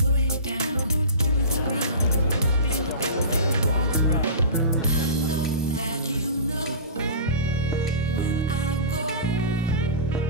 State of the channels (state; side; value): inverted; both; correlation -0.31